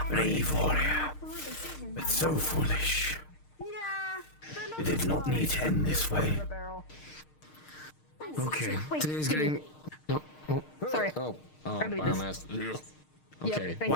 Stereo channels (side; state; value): right; late; 6.5 ms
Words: Brave warrior, but so foolish. Yeah. It did not need to end this way. The barrel. Okay. Wait, Today's give me- getting. No. Oh. Sorry. Oh. Grab me this. Biomass. Okay. thank